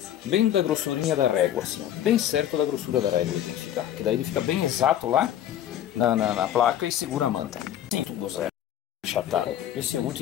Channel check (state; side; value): quieter; right; 11.3 dB